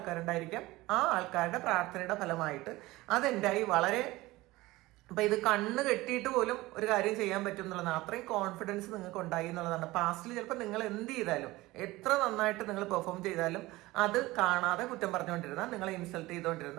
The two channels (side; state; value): left; quieter; 19.4 dB